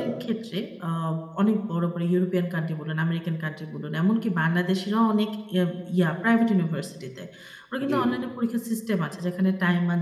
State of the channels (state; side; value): identical; both; correlation 1.00